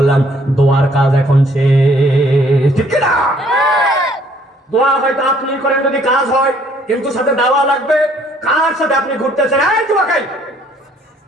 দোয়ার কাজ এখন শেষ, ঠিক না? দোয়া হয়তো আপনি করেন যদি কাজ হয়, কিন্তু সাথে দাওয়া লাগবে। কার সাথে আপনি ঘুরতেছেন? এই দোয়া খাই।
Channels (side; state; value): both; normal; correlation 0.62